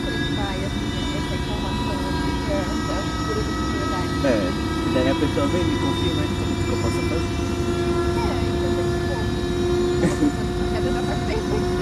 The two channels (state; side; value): identical; both; correlation 1.00